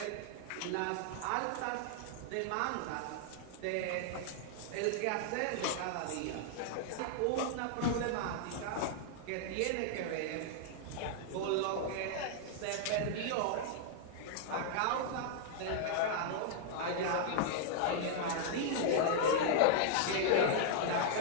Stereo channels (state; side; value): different; both; correlation -0.01